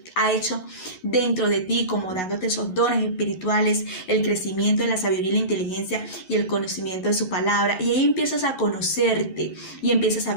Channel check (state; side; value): late; right; 11 ms